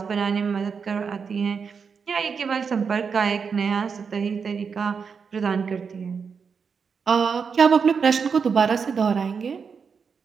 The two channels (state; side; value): quieter; left; 5.9 dB